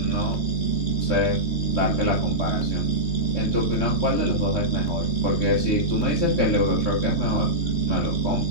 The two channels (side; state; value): right; late; 3.2 ms